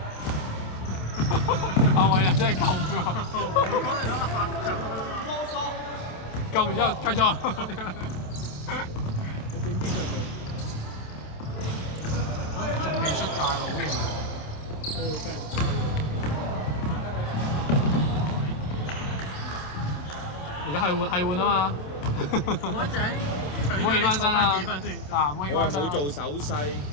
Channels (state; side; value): late; right; 27 ms